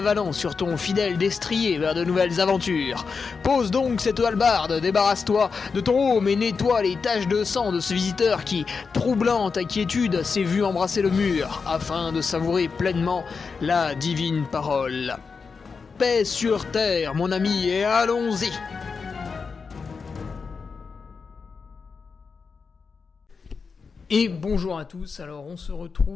sur ton fidèle destrier vers de nouvelles aventures. Pose donc cette hallebarde, débarrasse-toi de ton home et nettoie les taches de sang de ce visiteur qui, troublant ta quiétude, s'est vu embrasser le mur afin de savourer pleinement la divine parole. Paix sur terre, mon ami, et allons-y! Et bonjour à tous, alors on se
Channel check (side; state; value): right; quieter; 5.1 dB